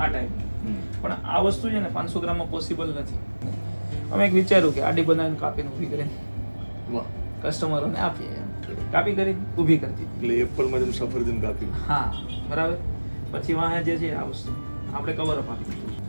ટાઈમ, પણ આ વસ્તુ છે ને 500 ગ્રામમાં પોસિબલ નથી. અમે એક વિચાર્યું કે આડી બનાવીને કાપીને ઊભી કરીને વાહ, કસ્ટમરોને આપીએ એમ. કાપી કરી ઊભી કરી દીધી. એટલે એપલમાં જેમ સફરજન કાપ્યું. હા બરાબર. પછી વાહે જે છે આ વસ્તુ આપણે કવર અપ આપી દીધું.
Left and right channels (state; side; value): inverted; both; correlation -1.00